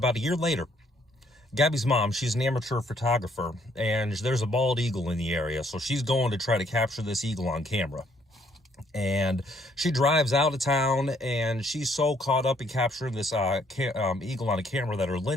a year later, Gabby's mom, she's an amateur photographer, and there's a bald eagle in the area, so she's going to try to capture this eagle on camera. And she drives out of town, and she's so caught up in capturing this eagle on a camera that her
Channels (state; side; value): normal; both; correlation 0.67